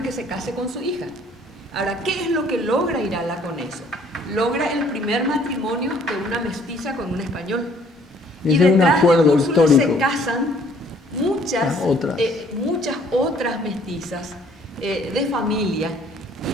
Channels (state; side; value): normal; both; correlation 0.60